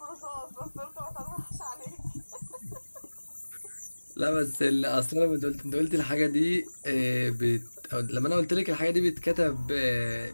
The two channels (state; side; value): inverted; both; correlation -1.00